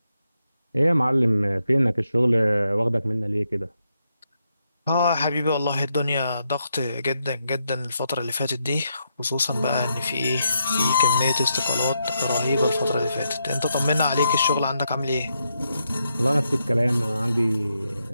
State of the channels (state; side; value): inverted; both; correlation -0.82